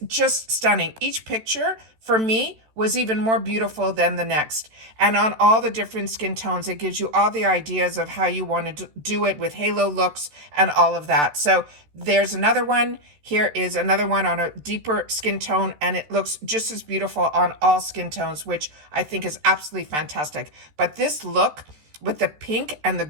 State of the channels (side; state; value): left; late; 13 ms